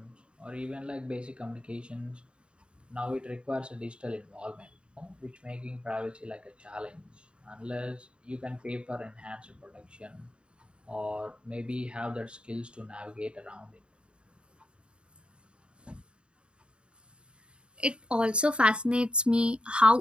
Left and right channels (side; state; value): left; late; 0.054 ms